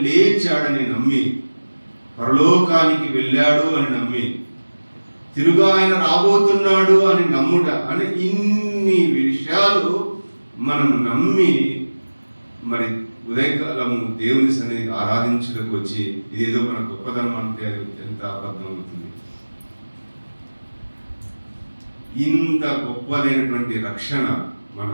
లేచాడని నమ్మి పరలోకానికి వెళ్ళాడు అని నమ్మి తిరుగా ఆయన రాబోతున్నాడు అని నమ్ముట అని ఇన్ని విషయాలు మనం నమ్మి మరి ఉదయకాలము దేవుని సన్నిధికి ఆరాధించడానికి వచ్చి ఇదేదో మన గొప్పతనం అంటే అది ఎంత అబద్ధం అవుతుంది. ఇంత గొప్పదైనటువంటి రక్షణ మన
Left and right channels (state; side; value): inverted; both; correlation -1.00